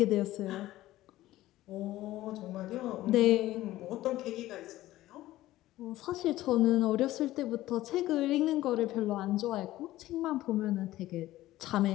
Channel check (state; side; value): quieter; right; 15.7 dB